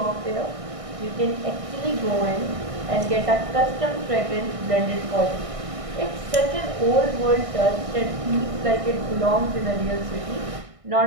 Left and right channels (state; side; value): late; left; 1.6 ms